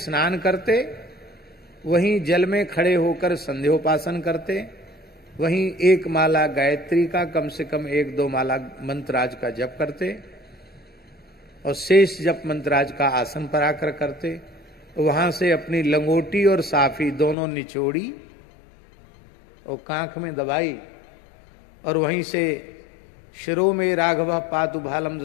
करते, वहीं जल में खड़े होकर संध्योपासन करते, वहीं एक माला गायत्री का, कम से कम 1-2 माला मंत्राज का जप करते और शेष जप मंत्राज का आसन पर आकर करते। वहां से अपनी लंगोटी और साफी दोनों निचोड़ी और कांख में दबाई और वहीं से शिरो में राघव पातु भालम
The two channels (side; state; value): right; drops out; at 17.4 s